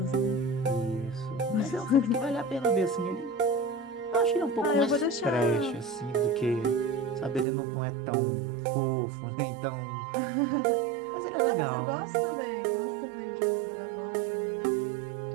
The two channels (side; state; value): left; drops out; at 7.5 s